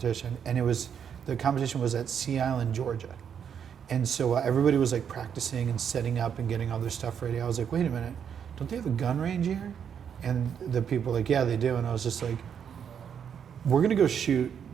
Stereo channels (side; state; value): left; quieter; 7.9 dB